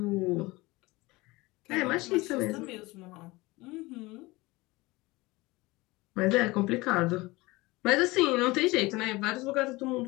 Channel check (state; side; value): quieter; right; 21.8 dB